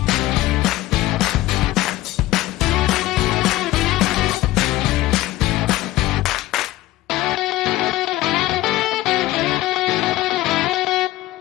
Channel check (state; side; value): quieter; right; 16.4 dB